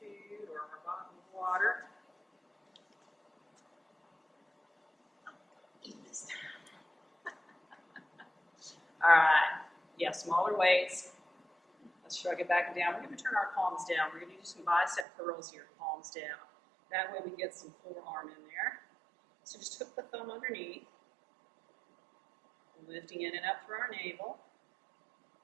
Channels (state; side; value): drops out; left; at 15.1 s